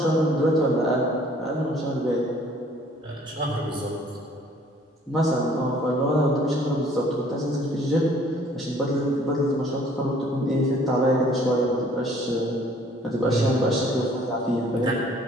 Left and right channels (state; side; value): normal; both; correlation 0.57